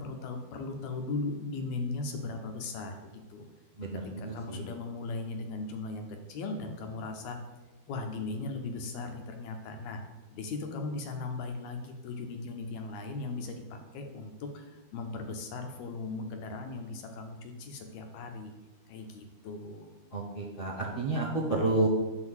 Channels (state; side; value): late; right; 12 ms